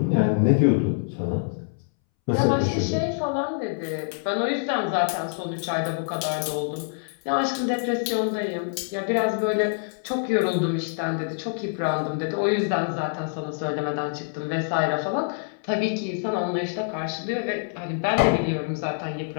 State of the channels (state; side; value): silent; right; 61 dB below the other